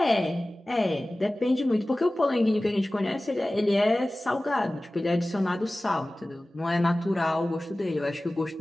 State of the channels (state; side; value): normal; both; correlation 0.97